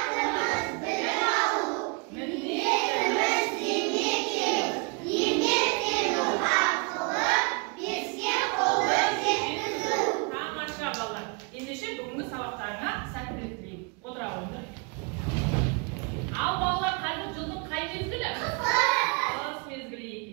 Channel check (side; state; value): left; quieter; 32.1 dB